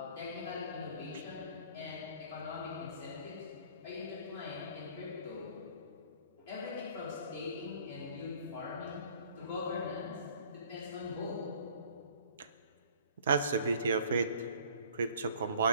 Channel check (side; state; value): both; inverted; correlation -0.54